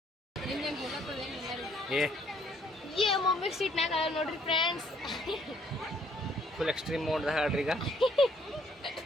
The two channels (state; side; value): normal; both; correlation 0.65